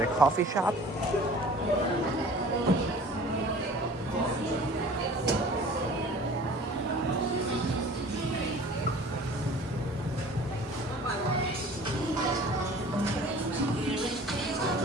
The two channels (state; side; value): normal; both; correlation 0.46